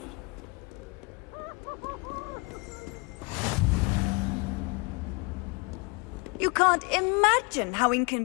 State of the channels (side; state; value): right; quieter; 28.8 dB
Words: You can't imagine how